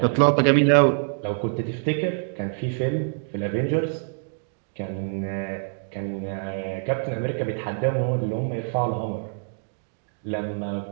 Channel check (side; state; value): left; silent; 61 dB below the other